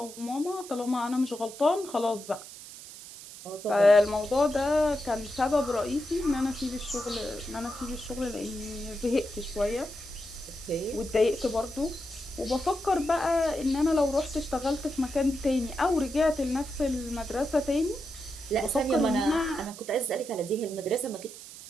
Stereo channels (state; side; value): noise; right; hiss, 15 dB below the sound